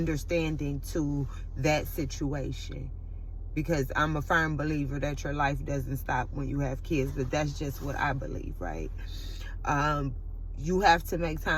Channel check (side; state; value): both; identical; correlation 1.00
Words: to that situation. Because I'm a firm believer that your life doesn't stop when you have kids. But that's just what I believe, right? You have to make